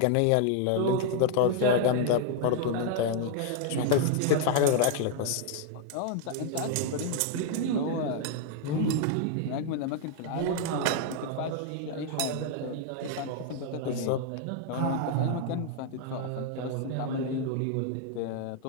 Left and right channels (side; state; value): both; different; correlation 0.00